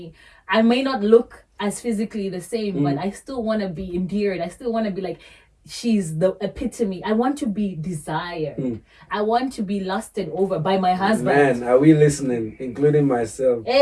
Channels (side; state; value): both; identical; correlation 1.00